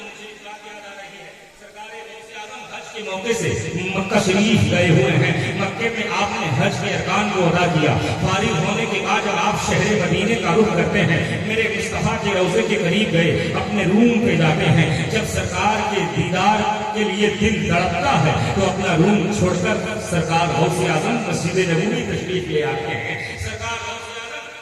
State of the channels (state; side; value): identical; both; correlation 1.00